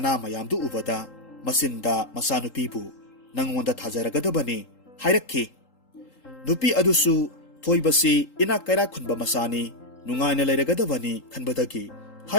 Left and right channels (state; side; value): late; right; 3.8 ms